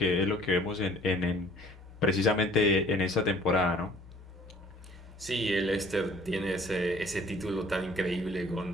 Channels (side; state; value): both; normal; correlation 0.54